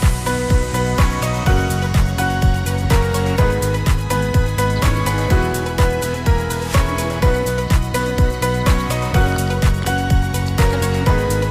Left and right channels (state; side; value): identical; both; correlation 1.00